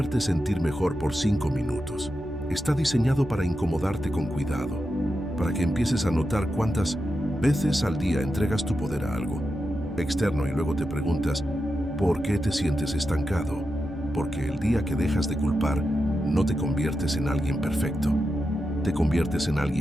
sentir mejor por 5 minutos. Está diseñado para incomodarte con cuidado, para que empieces a notar cuántas veces al día entregas tu poder a algo externo y luego te preguntas, ¿por qué te sientes estancado? Porque el día que dejas de culpar, no te conviertes en alguien perfecto, te conviertes en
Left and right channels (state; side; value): noise; right; hum, 17 dB below the sound